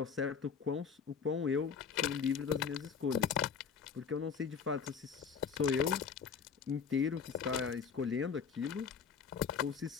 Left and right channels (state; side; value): quieter; right; 6.4 dB